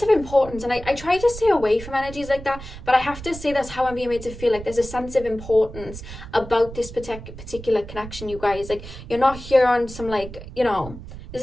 of importance, and I try to stay away from energies like that, but I have to say that's how I'm being made to feel. Like there's a sense of importance about this particular connection, you guys. Like you're not here on some like, you know, this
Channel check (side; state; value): right; noise; rumble, 13 dB below the sound